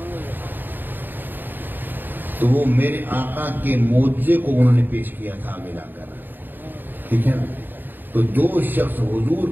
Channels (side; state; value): left; late; 0.092 ms